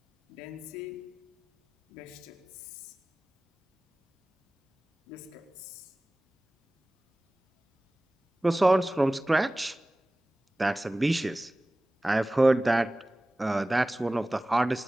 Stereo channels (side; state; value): both; normal; correlation 0.98